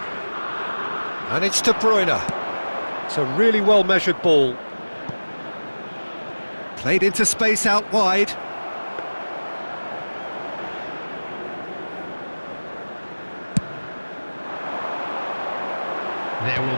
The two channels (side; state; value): both; inverted; correlation -1.00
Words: And it's De Bruyne. It's a really well-measured ball. Played into space out wide. There will